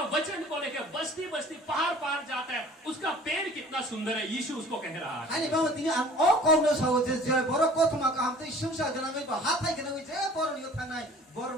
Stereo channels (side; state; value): both; normal; correlation 0.48